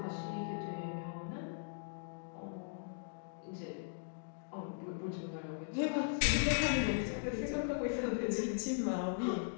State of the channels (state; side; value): silent; right; digital silence